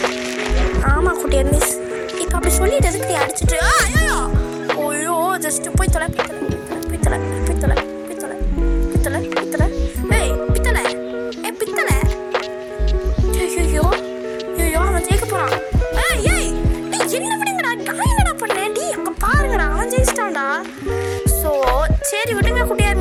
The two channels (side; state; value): both; identical; correlation 1.00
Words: ஆமாம் குட்டியார் மிஸ். இப்போ அப்படி சொல்லிட்டு எதுக்கு நீ அடிச்சுட்டு ஐயோ ஜஸ்ட்டு போய் தொலை ஐயோ அவன் ஜெயிக்க போகிறான். என்ன விடுங்கடா நான் என்னடா பண்ணேன் டி அங்கே பாருங்கடா அவன் ஜெயிச்சிட்டான்டா. ஸோ சரி விடுங்க குட்டியார்